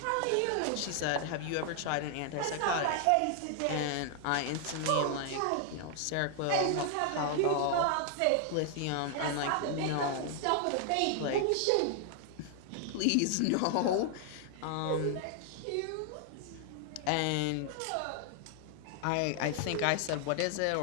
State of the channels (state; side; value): different; both; correlation 0.00